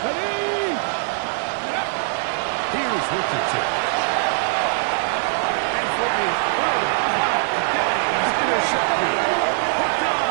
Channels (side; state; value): left; silent; 64 dB below the other